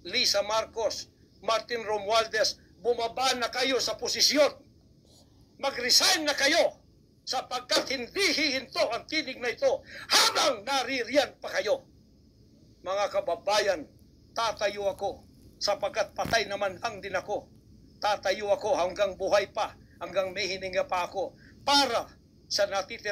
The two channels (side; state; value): both; identical; correlation 1.00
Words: Lisa Marcos, Martin Romualdez, bumaba na kayo sa posisyon. Mag-resign na kayo sapagkat hindi hihinto ang tinig na ito habang naririyan pa kayo. Mga kababayan, tatayo ako sapagkat patay naman lang din ako. Tatayo ako hanggang buhay pa, hanggang may hininga pa ako para sa